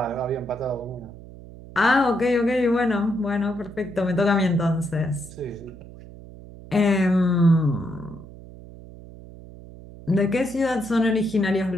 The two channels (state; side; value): noise; right; hum, 17 dB below the sound